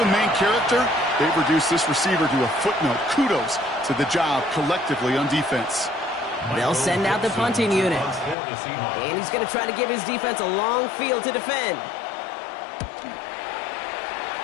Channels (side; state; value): right; drops out; at 8.3 s